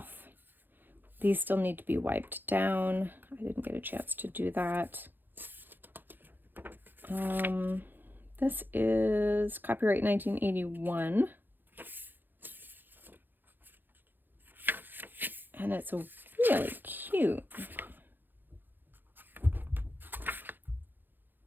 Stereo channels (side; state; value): left; late; 0.092 ms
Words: These still need to be wiped down. I didn't get a chance to do that. This is copyright 1981. And it's really cute.